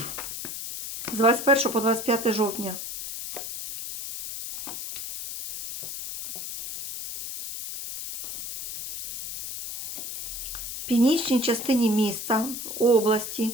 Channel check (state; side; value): noise; left; hiss, 7 dB below the sound